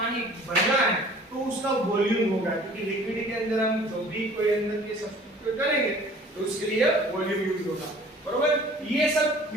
भरना है तो उसका वॉल्यूम होगा क्योंकि लिक्विड के अंदर हम जो भी कोई अंदर के सब्स्टिट्यूट करेंगे तो उसके लिए वॉल्यूम यूज होगा। बरोबर। ये सब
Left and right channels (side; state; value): both; normal; correlation 0.50